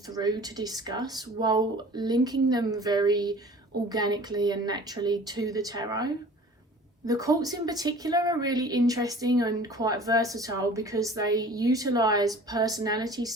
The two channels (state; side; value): normal; both; correlation 0.46